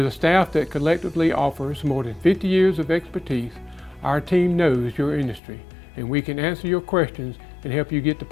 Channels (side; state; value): right; drops out; at 5.4 s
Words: a staff that collectively offers more than 50 years of expertise, our team knows your industry, and we can answer your questions and help you get the